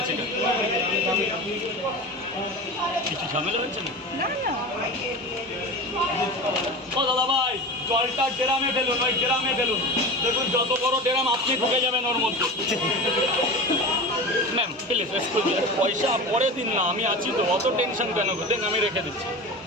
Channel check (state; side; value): normal; both; correlation 0.30